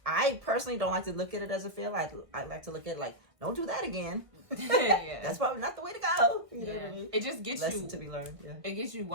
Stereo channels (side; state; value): left; late; 1.6 ms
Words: I personally don't like to look at it as a fail. I like to look at it like, don't do that again. That's probably not the way to go. You know what I mean? It just gets Lesson to be learned. It gets you